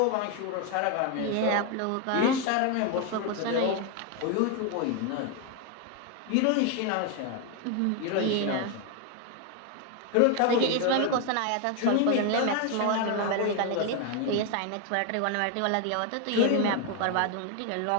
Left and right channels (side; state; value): both; different; correlation 0.01